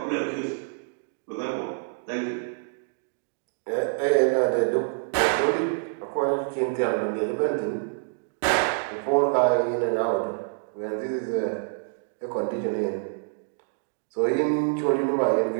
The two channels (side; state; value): left; silent; digital silence